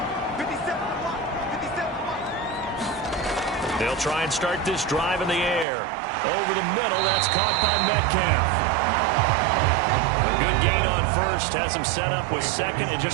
They'll try and start this drive in the air. Over the middle, that's caught by Metcalf. A good gain on 1st, has him set up with 2nd and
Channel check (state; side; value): drops out; left; at 5.7 s